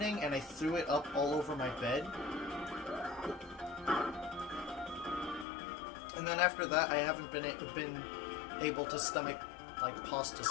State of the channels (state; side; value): drops out; right; at 5.5 s